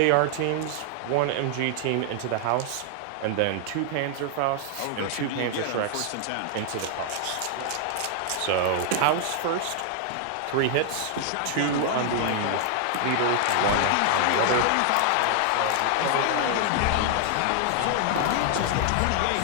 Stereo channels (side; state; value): both; different; correlation 0.00